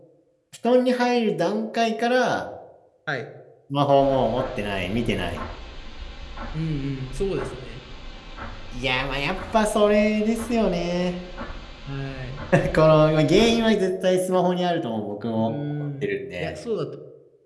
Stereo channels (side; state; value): both; identical; correlation 1.00